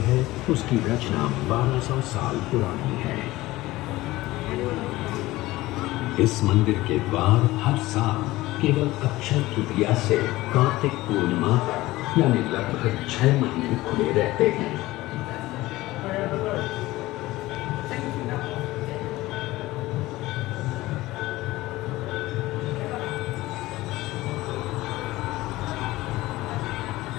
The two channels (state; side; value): quieter; right; 18.2 dB